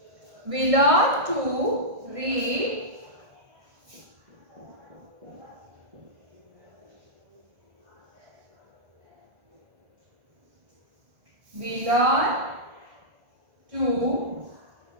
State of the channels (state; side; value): late; left; 1.5 ms